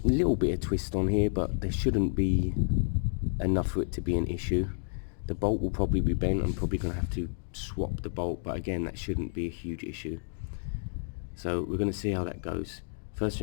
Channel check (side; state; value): right; silent; digital silence